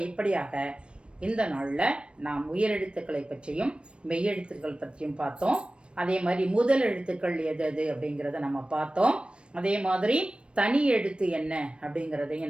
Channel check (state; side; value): late; left; 0.058 ms